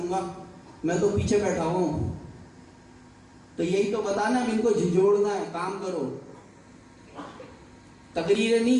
मैं तो पीछे बैठा हूं। तो यही तो बताना, इनको झिझोड़ना है। काम करो, तकरीरें नहीं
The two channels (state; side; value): identical; both; correlation 1.00